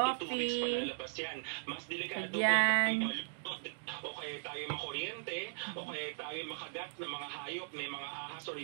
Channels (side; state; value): left; silent; digital silence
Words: 1 to 2 weeks palalabas yan. Mas delikado kung tayo malunod o kaya tayo makuryente o kaya tayo makagat ng mga hayop, may mga ahas o